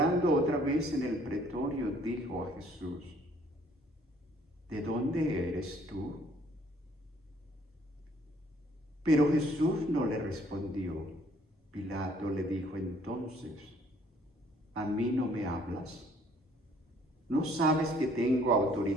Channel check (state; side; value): normal; both; correlation 0.61